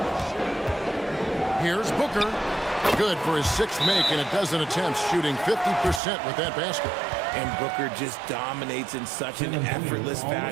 Here's Booker. Good for his 6th make and a dozen attempts, shooting 50% with that basket. And Booker just dominates in such an effortless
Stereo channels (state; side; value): drops out; left; at 6.0 s